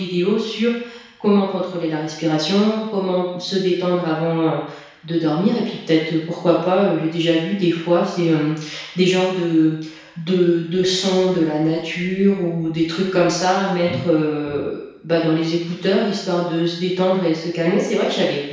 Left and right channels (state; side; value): identical; both; correlation 1.00